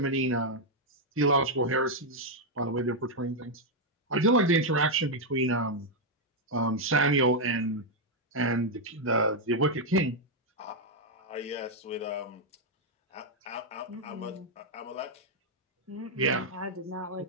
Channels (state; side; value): normal; both; correlation -0.01